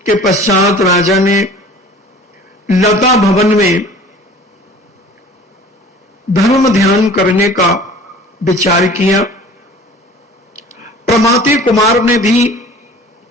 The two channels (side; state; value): both; normal; correlation 0.46